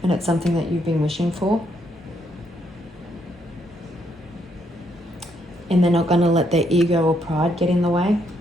and it's something that you've been wishing for. And they're not going to let their ego or pride get in the way.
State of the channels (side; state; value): both; normal; correlation 0.74